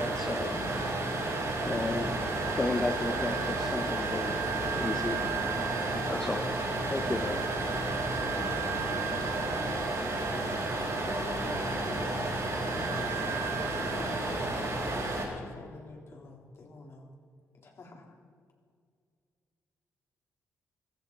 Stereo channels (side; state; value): both; normal; correlation 0.60